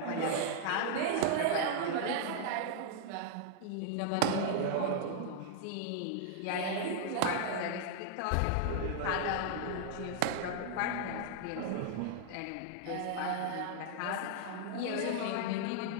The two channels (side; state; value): both; different; correlation -0.01